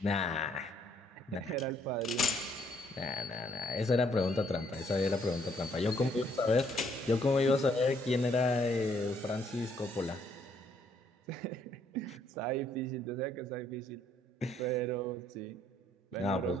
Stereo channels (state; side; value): normal; both; correlation 0.67